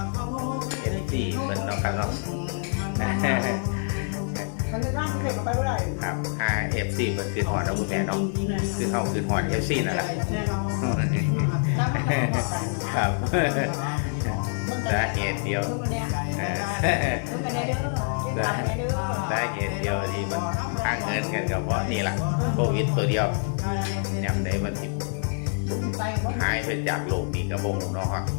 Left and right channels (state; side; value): silent; right; 61 dB below the other